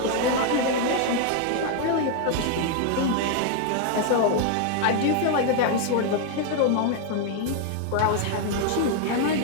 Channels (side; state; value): both; different; correlation 0.00